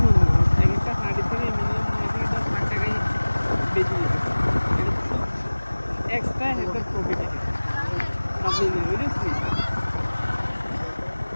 মনে হয় এক একটা হাঁড়ি থেকে মিনিমাম 9 থেকে 10 লাখ টাকাই বেশি যেতেছে, এক্সট্রা একটা প্রফিট এটা বাবলিনের, বুঝেছিস?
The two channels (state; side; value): inverted; both; correlation -1.00